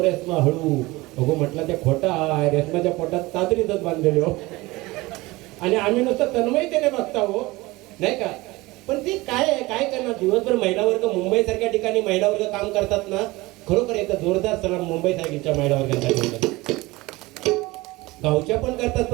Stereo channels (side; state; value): left; quieter; 21.1 dB